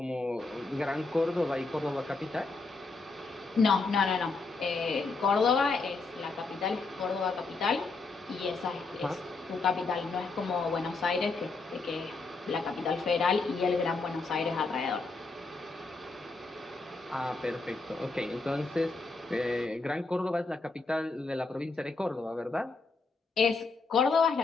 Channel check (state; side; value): quieter; right; 3.8 dB